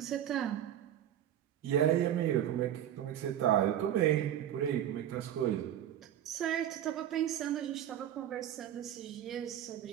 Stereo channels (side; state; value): left; quieter; 11.0 dB